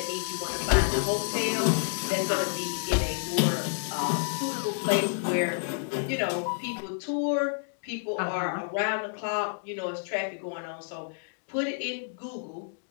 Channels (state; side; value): silent; right; digital silence